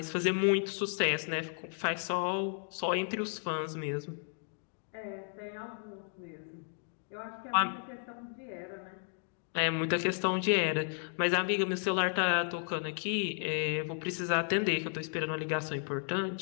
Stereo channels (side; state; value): right; silent; 55 dB below the other